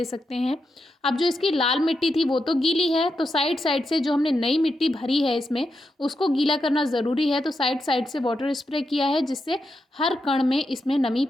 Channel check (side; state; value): both; normal; correlation 0.86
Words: सकते हैं। अब जो इसकी लाल मिट्टी थी वो तो गीली है, तो साइड साइड से जो हमने नई मिट्टी भरी है इसमें उसको गीला करना ज़रूरी है। तो साइड साइड से वाटर स्प्रे किया है, जिससे हर कण में इसमें नमी